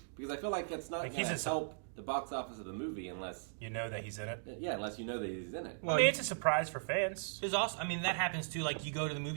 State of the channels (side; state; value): left; silent; digital silence